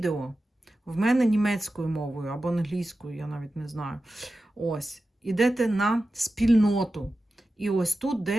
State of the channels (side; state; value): both; normal; correlation 0.93